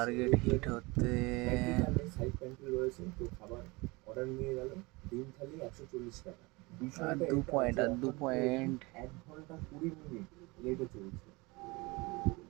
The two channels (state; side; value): quieter; left; 24.6 dB